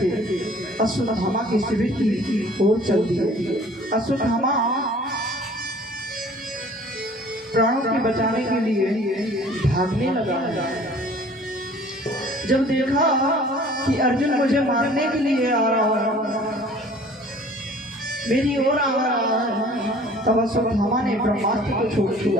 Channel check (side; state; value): both; normal; correlation 0.50